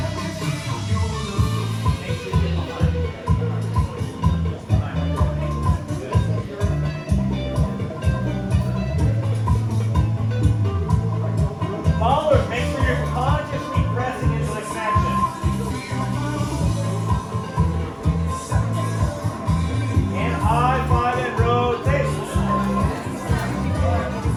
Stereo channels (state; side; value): identical; both; correlation 1.00